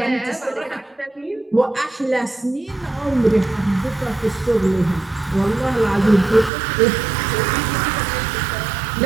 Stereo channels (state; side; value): drops out; left; at 6.5 s